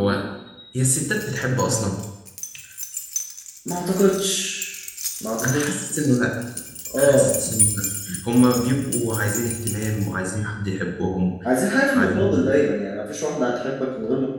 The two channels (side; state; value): both; identical; correlation 1.00